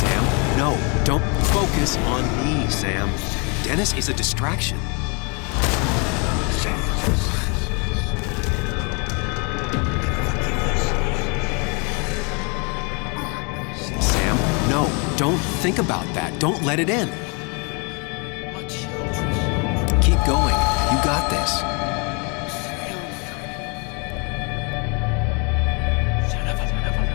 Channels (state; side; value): quieter; right; 33.4 dB